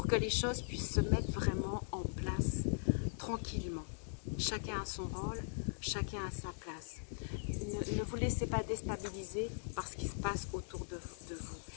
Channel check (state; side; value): silent; right; digital silence